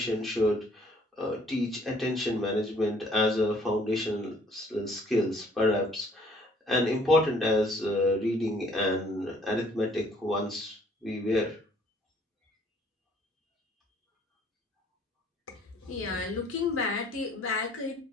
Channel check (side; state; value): both; normal; correlation 0.60